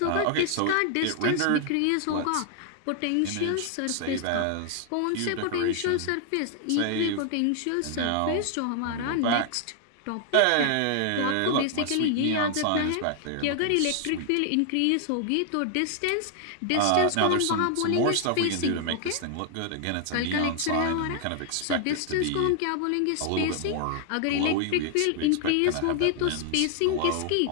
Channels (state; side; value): different; both; correlation 0.00